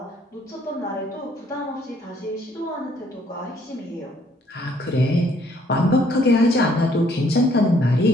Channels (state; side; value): normal; both; correlation 0.64